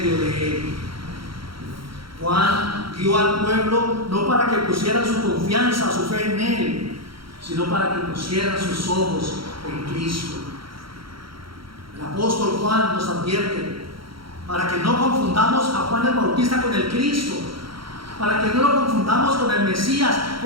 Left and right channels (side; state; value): left; late; 0.74 ms